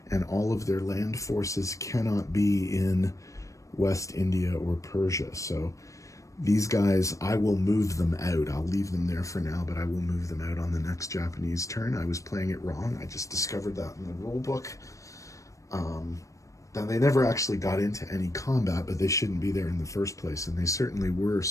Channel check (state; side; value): late; right; 0.16 ms